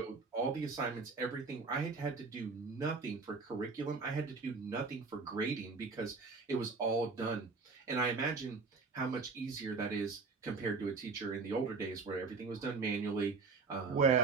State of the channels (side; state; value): left; quieter; 4.5 dB